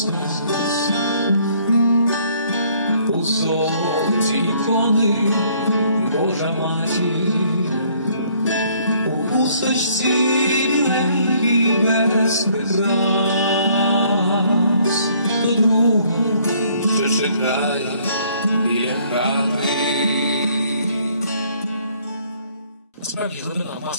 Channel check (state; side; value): inverted; both; correlation -0.62